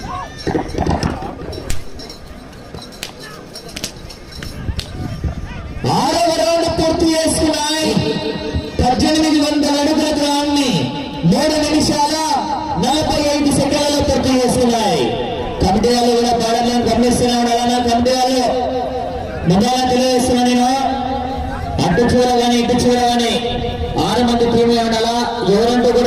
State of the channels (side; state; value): both; identical; correlation 1.00